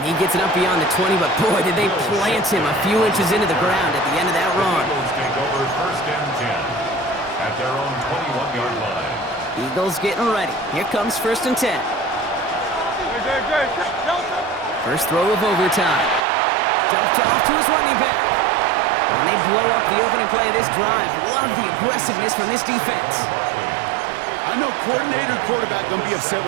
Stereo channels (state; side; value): drops out; left; at 16.2 s